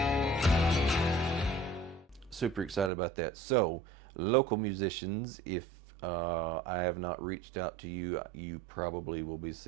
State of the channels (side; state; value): left; drops out; at 2.9 s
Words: Super excited about that. So, local musicians, if I have not reached out to you, you probably will be